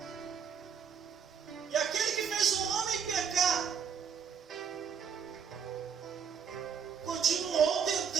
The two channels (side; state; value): left; quieter; 7.1 dB